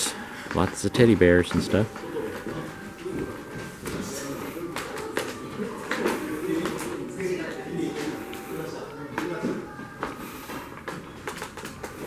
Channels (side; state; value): both; identical; correlation 1.00